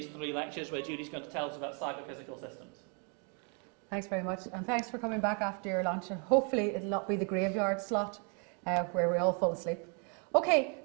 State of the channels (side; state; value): left; quieter; 37.9 dB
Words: 3 lectures where Julie's going to tell us about cyber-physical systems. Thanks very much, and thanks for coming back after your lunch, and hopefully it'll not be the graveyard slot where we all fall asleep. Okay,